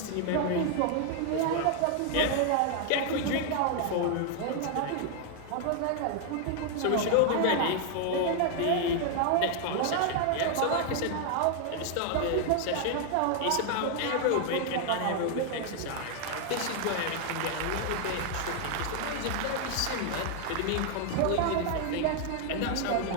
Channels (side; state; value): both; different; correlation 0.00